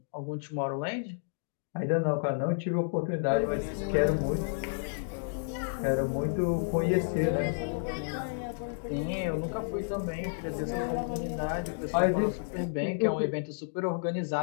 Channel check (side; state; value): right; silent; digital silence